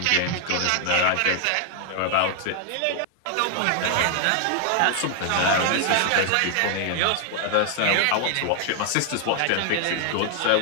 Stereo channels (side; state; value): both; different; correlation 0.00